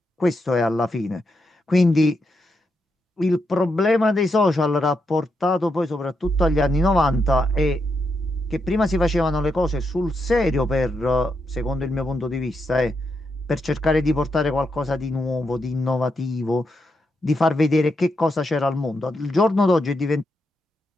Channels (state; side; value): normal; both; correlation 0.83